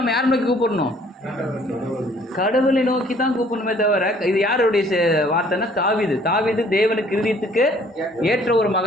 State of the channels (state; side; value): normal; both; correlation 0.58